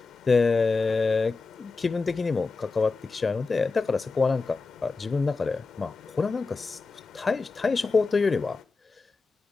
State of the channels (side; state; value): right; quieter; 4.1 dB